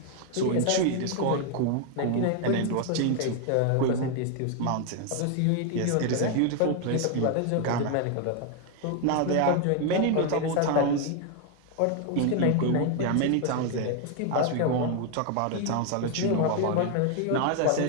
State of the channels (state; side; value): different; both; correlation 0.01